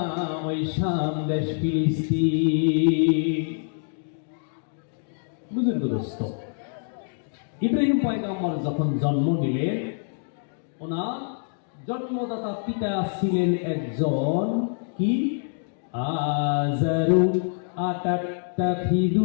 ওই শাম দেশ ফিলিস্তিন। বুঝুন দোস্ত, ইব্রাহিম পয়গাম্বর যখন জন্ম নিলেন, ওনার জন্মদাতা পিতা ছিলেন একজন কি আযারু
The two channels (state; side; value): silent; right; digital silence